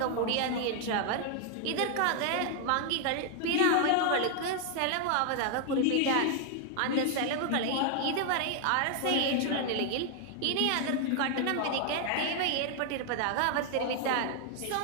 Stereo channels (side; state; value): both; different; correlation 0.00